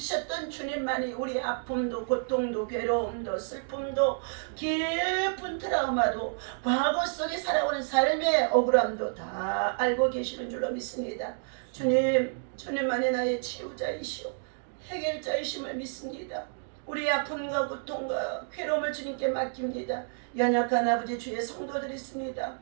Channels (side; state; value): left; silent; digital silence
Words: 주님만이 우리 아픔도 고통도 괴로움도 슬픔도 깊은 트라우마도 과거 속에 살아오는 삶의 억울함도 다 알고 계시는 줄로 믿습니다. 주님만이 나의 치유자이시오 해결자이심을 믿습니다. 우리의 아픔과 고통과 괴로움을 주님께 맡깁니다. 연약한 아버지 주의 성도들이 있습니다.